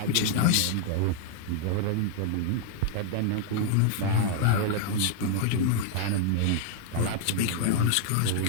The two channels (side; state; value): both; different; correlation 0.00